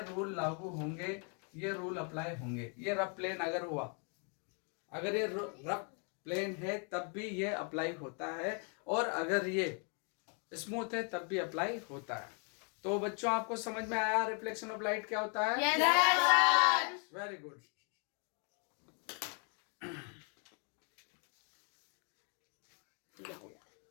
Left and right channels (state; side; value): quieter; right; 38.7 dB